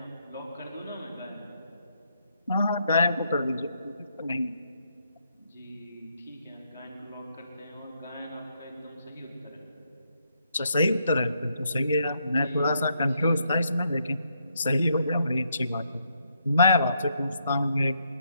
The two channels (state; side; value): inverted; both; correlation -0.76